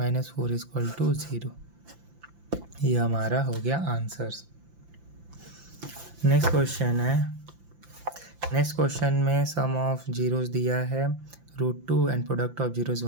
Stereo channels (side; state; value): left; late; 5.8 ms